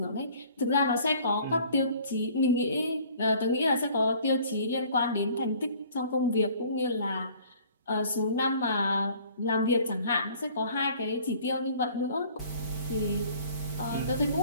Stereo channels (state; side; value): inverted; both; correlation -0.53